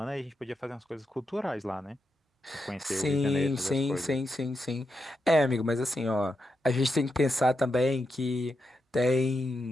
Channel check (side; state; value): both; normal; correlation 0.86